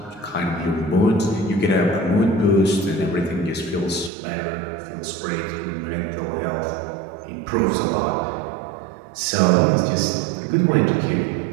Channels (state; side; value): drops out; left; at 4.1 s